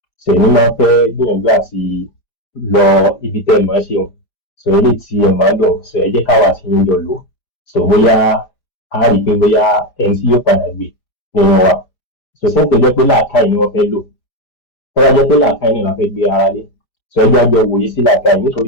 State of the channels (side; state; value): right; late; 5.0 ms